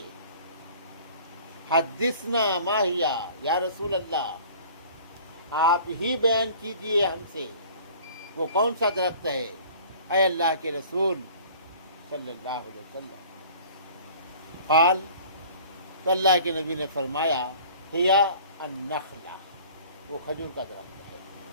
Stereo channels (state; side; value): inverted; both; correlation -0.48